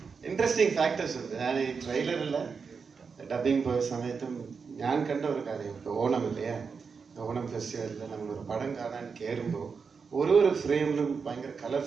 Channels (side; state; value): left; quieter; 5.5 dB